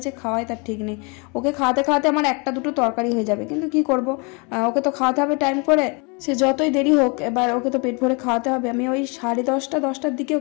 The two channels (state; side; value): quieter; right; 31.6 dB